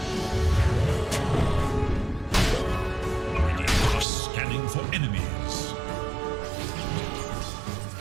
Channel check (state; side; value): drops out; left; at 4.0 s